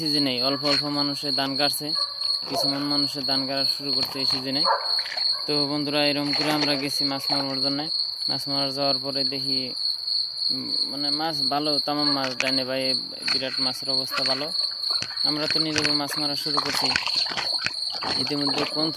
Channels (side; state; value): both; identical; correlation 1.00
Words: অল্প অল্প মানুষের ধান কাটছে, কিছুমান মানুষের ধান কাটা শুরু করছে এই সিজনে। তো বন্ধুরা, এরকম করে আমরা গেছি মাছ মারার জন্য। মাছ মারা যাওয়ার পরে দেখি মানে মাছ ভালো, তামাম মাছ দেয় না ভাই, বিরাট মাছের অবস্থা ভালো। আমরা তো নিজেকে মাছ মারা শুরু করছি। ইতিমধ্যে